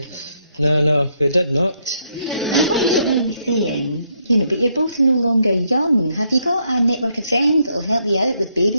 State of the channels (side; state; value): both; inverted; correlation -0.75